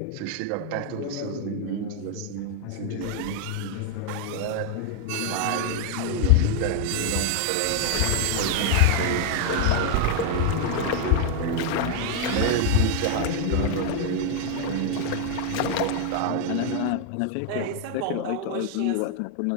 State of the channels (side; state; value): both; different; correlation 0.00